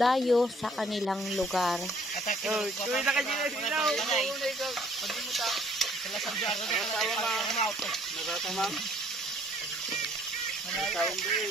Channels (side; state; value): both; normal; correlation 0.61